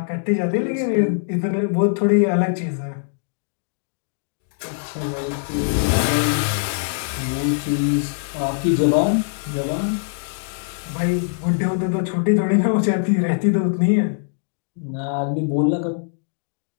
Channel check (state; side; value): silent; right; digital silence